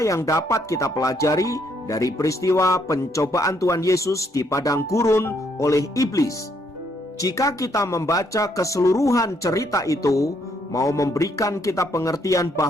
yang dapat kita pelajari dari peristiwa pencobaan Tuhan Yesus di padang gurun oleh iblis? Jika kita membaca keseluruhan cerita itu, mau memberikan kita pengertian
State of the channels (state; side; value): normal; both; correlation 0.71